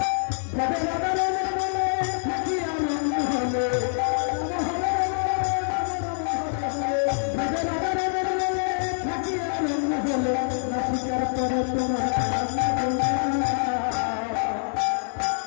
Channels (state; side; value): silent; right; 58 dB below the other